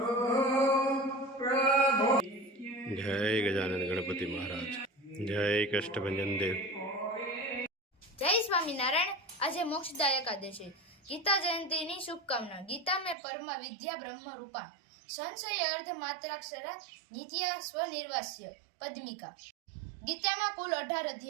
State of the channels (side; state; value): left; drops out; at 13.2 s